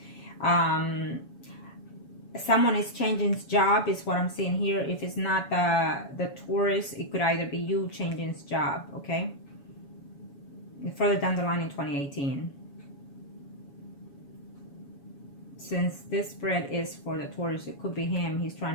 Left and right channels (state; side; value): late; right; 7.2 ms